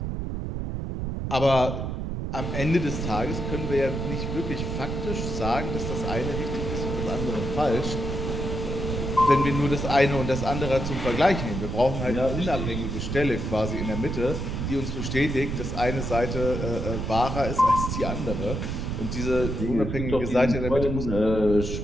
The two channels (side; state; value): right; noise; rumble, 3 dB below the sound